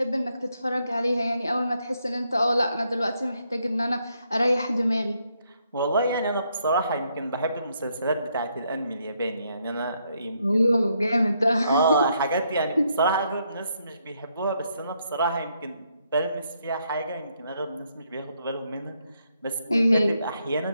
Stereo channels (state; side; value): inverted; both; correlation -0.75